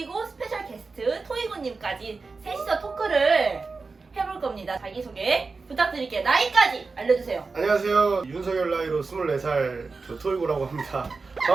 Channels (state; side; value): quieter; left; 4.2 dB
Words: 스페셜 게스트 토이고님까지 셋이서 토크를 해볼 겁니다. 자기소개 부탁드릴게요. 나이까지 알려주세요. 안녕하세요. 윤석열 나이로 24살 저 토이고라고 합니다.